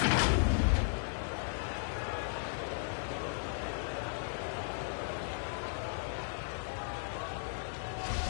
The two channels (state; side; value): silent; right; digital silence